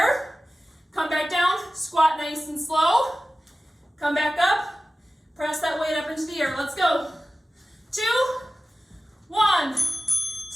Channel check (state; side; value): normal; both; correlation 0.95